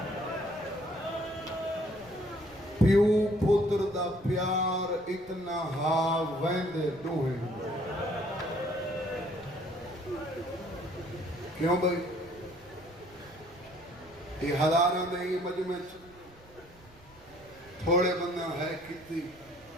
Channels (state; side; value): noise; right; rumble, 25 dB below the sound